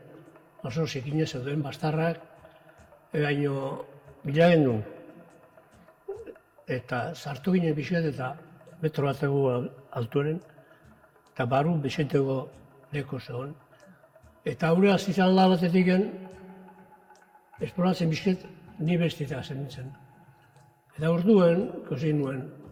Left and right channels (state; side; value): identical; both; correlation 1.00